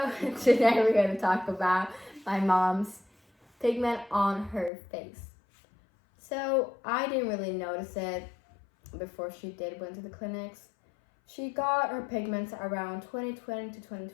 today we're going to talk about my mom's pigment on her face. So I didn't really notice it before she went to the clinics. She got her pigments around 2020 to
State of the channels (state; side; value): drops out; right; at 4.7 s